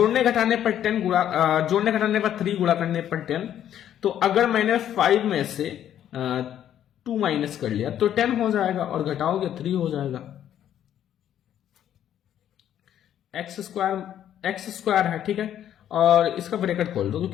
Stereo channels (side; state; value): right; quieter; 10.6 dB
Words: घटाने पर 10 गुणा, जोड़ने घटाने पर 3 गुणा करने पर 10। तो अगर मैंने 5 में से 2 माइनस कर लिया तो 10 हो जाएगा, और घटाओगे 3 हो जाएगा। x² है, ठीक है, और इसका ब्रैकेट खोल दो,